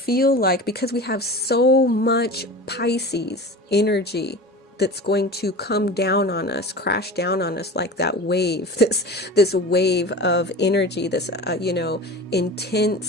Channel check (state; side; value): normal; both; correlation 0.34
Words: like, because we have so much Pisces energy that's going to come down on us, crash down on us like that wave, this wave of energy, this